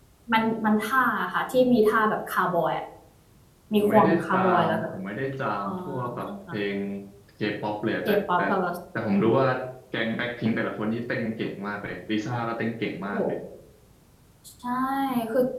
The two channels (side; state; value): both; identical; correlation 1.00